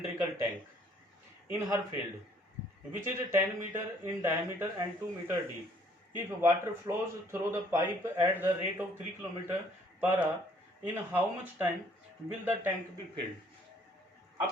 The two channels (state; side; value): normal; both; correlation 0.61